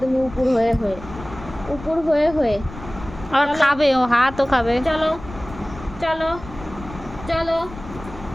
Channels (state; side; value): noise; left; rumble, 15 dB below the sound